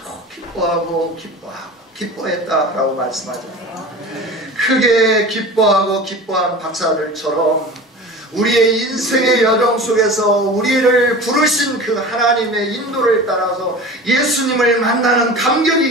기뻐했다라고 말씀하잖아요. 크게 기뻐하고 기뻐한 박사들처럼 우리의 인생의 여정 속에서 우리를 부르신 그 하나님의 인도를 따라서 예수님을 만나는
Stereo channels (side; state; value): both; normal; correlation 0.35